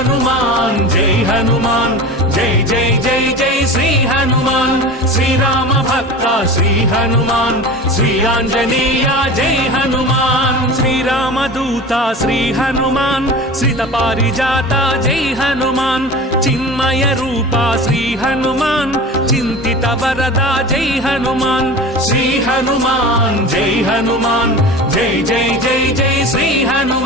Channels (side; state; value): both; normal; correlation 0.34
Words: जय हनुमान जय जय जय जय श्री हनुमान श्री राम भक्त श्री हनुमान श्री आंजनेय जय हनुमान श्री रामदूता श्री हनुमान श्रित पारिजाता जय हनुमान चिन्मय रूपा श्री हनुमान चिंतित वरदा जय हनुमान श्री हनुमान जय हनुमान जय जय जय जय श्री